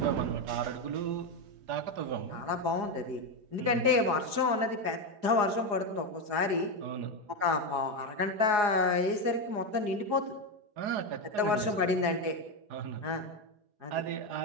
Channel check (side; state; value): left; late; 4.8 ms